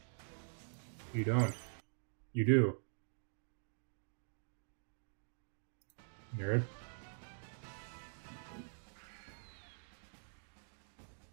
You don't. You do. Nerd.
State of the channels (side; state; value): left; silent; digital silence